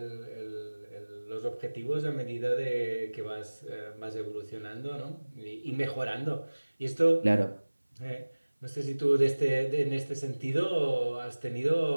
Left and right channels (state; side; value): inverted; both; correlation -1.00